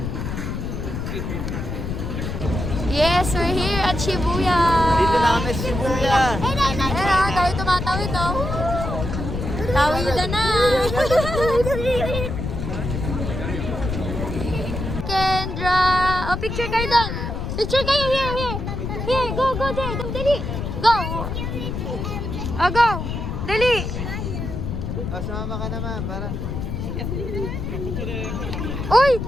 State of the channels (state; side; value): noise; left; rumble, 4 dB below the sound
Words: Yes, we're here at Shibuya. Dito na kami Shibuya. Ayan, tayo tumatawid, oh. Tawidan na. Kendra. Oh, picture kayo doon. Picture kayo, here. Here, go there. Dali. Go. Oh, go. Dali. O, sumama ka naman para... Uy!